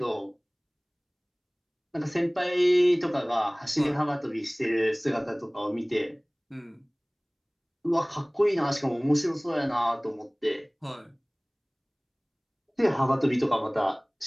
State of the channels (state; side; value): identical; both; correlation 1.00